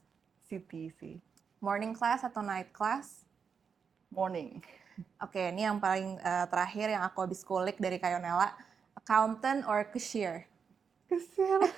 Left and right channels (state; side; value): quieter; left; 6.3 dB